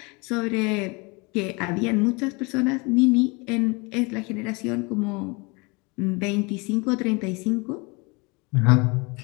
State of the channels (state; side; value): quieter; right; 28.2 dB